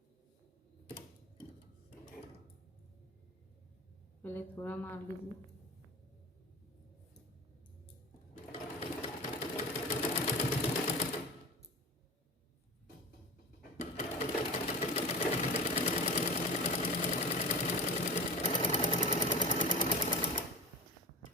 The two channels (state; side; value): normal; both; correlation 0.31